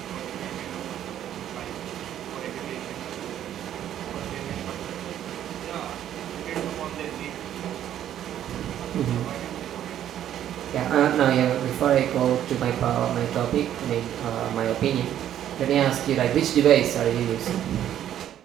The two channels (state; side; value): quieter; left; 11.0 dB